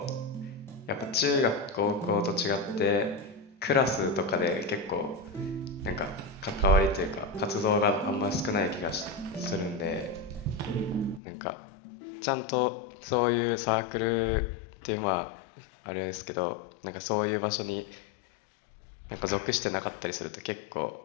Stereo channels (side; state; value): right; drops out; at 11.2 s